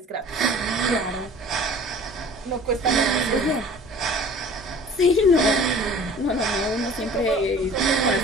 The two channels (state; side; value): normal; both; correlation 0.46